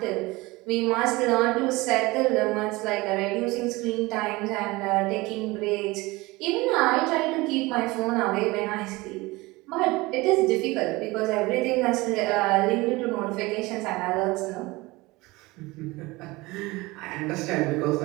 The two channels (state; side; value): quieter; left; 22.0 dB